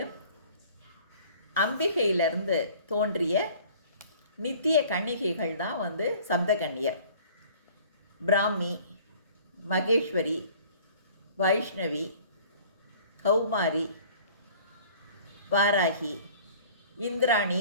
அம்பிகையிலிருந்து தோன்றிய நித்திய கன்னிகைகள் தான் சப்த கன்னியர். பிராமி, மகேஸ்வரி, வைஷ்ணவி, கௌமாரி, வாராகி, இந்திராணி,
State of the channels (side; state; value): both; inverted; correlation -0.50